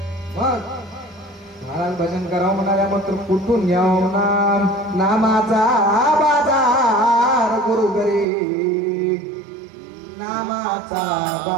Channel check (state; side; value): drops out; left; at 8.2 s